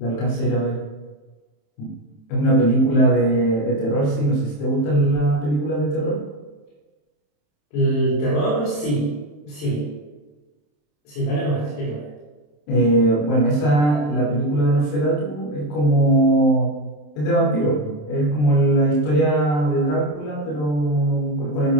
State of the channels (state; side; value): late; right; 27 ms